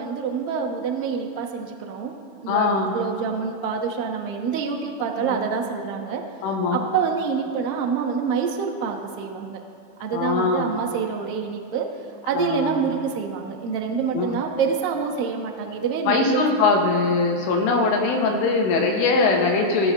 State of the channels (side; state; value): right; late; 15 ms